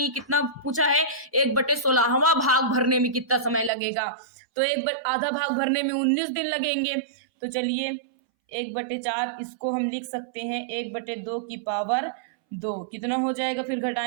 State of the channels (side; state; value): left; drops out; at 3.7 s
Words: कितना पूछा है, 1/16वां भाग भरने में कितना समय लगेगा। तो आधा भाग भरने में 19 दिन लगेंगे। तो चलिए 1/4 इसको हम लिख सकते हैं 1/2 की पावर 2। कितना हो जाएगा, फिर